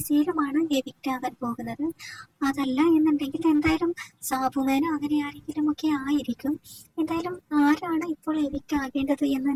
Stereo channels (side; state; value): both; identical; correlation 1.00